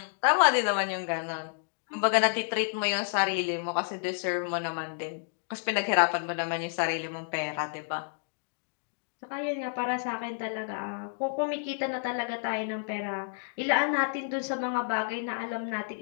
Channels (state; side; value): silent; right; digital silence